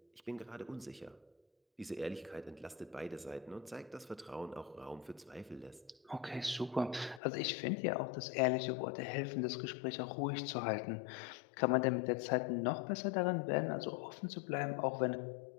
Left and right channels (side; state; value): right; drops out; at 7.2 s